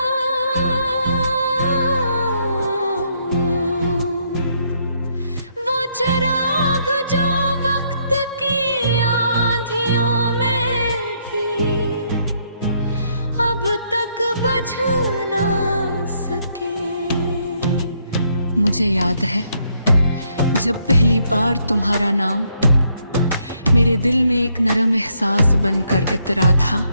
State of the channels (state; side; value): inverted; both; correlation -0.72